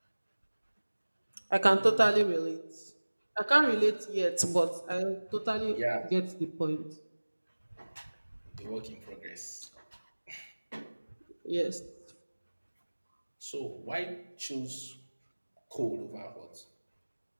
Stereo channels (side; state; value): both; inverted; correlation -1.00